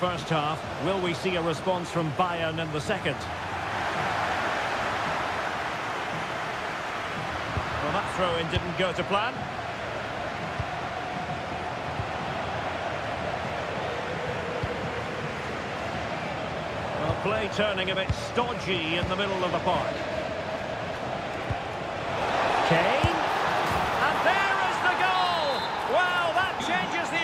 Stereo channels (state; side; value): identical; both; correlation 1.00